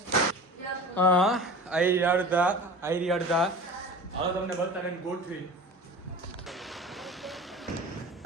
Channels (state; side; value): normal; both; correlation 0.37